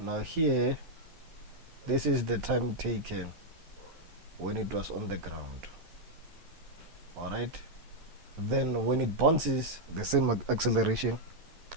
here this is the time taken when it was on the ground. All right, then when it bounces, the same acceleration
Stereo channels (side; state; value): left; late; 12 ms